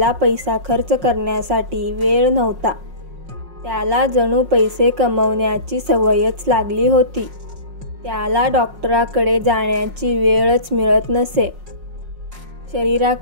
पैसा खर्च करण्यासाठी वेळ नव्हता. त्याला जणू पैसे कमवण्याची सवयच लागली होती. त्याला डॉक्टराकडे जाण्याची वेळच मिळत नसे.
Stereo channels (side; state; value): left; late; 5.5 ms